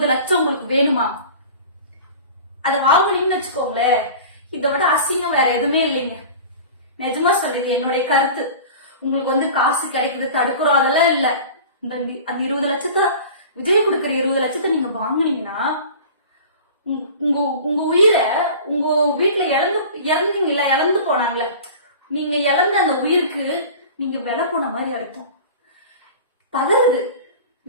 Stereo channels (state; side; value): inverted; both; correlation -0.38